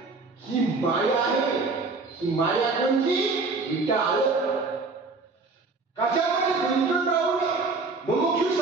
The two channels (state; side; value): quieter; left; 3.9 dB